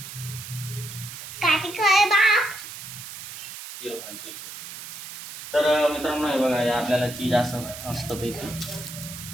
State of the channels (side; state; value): right; noise; hiss, 11 dB below the sound